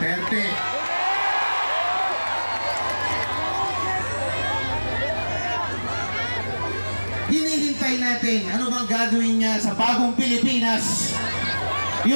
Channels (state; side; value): inverted; both; correlation -1.00